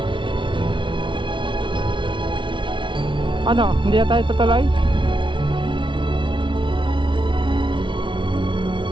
Ano, hindi na tayo tutuloy?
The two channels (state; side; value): late; left; 0.24 ms